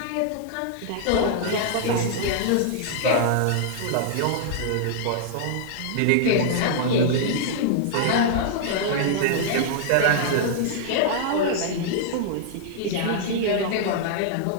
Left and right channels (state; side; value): different; both; correlation -0.01